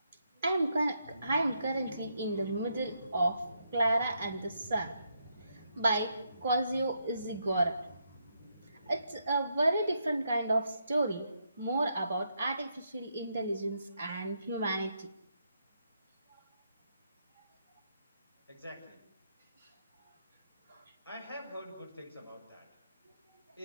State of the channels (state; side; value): inverted; both; correlation -0.79